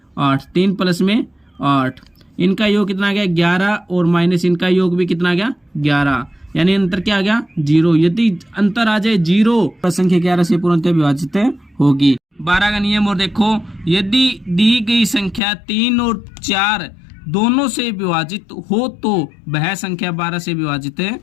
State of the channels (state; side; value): drops out; right; at 15.4 s